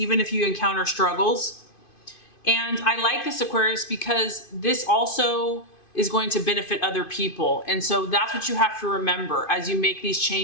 if you encounter struggles. And I like this, Aquarius, because this also is going to benefit other people. And so that's what you have to remember as you make these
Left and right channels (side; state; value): right; late; 2.5 ms